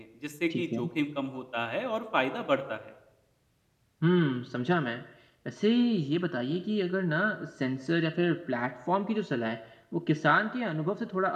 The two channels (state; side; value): identical; both; correlation 1.00